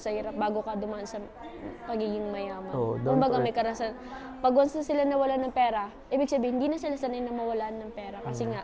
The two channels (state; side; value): identical; both; correlation 1.00